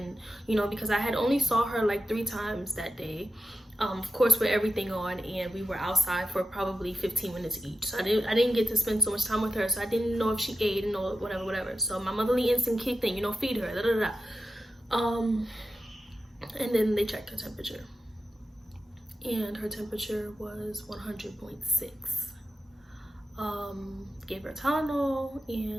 you know, because I had only saw her like 3 times that day. Of course, with everything on, and we were outside for probably 15 minutes each. So I didn't get to spend so much time with her, so I didn't know if she ate and know whatever. So my motherly instinct kicked in, you know, feed her, da da da. And then they checked her temperature, and her temperature was 100.6. Gave her Tylenol,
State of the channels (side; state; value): both; normal; correlation 0.90